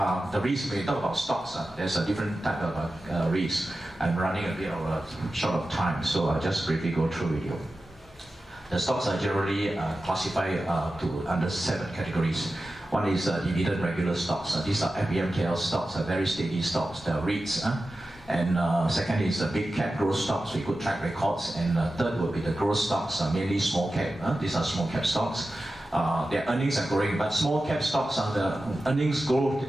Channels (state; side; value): normal; both; correlation 0.93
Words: risk, when you talk about stocks, there's a different type of risk. I'm running a bit of short of time, so I'll just briefly go through with you. The stocks are generally classified under 7 categories. One is dividend regular stocks. These are FBMKL stocks, very steady stocks, the REITs. And second is big cap growth stocks with good track records. And third would be the growth stocks, mainly small cap. These are small cap stocks. Their earnings are growing, but small cap stocks, the earnings growth